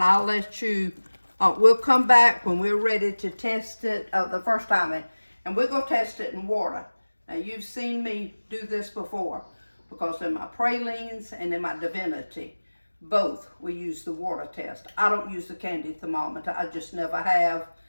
I'll let you, we'll come back when we're ready to test it the first time, and we're going to test it in water. Now, you've seen me do this before, because in my pralines and in my divinity, both we use the water test. I don't use the candy thermometer. I just never have,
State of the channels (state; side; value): inverted; both; correlation -1.00